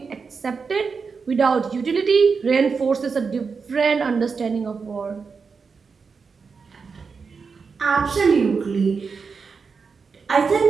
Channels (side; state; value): left; quieter; 5.2 dB